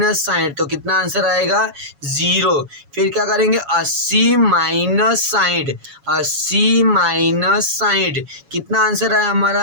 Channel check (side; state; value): left; late; 7.2 ms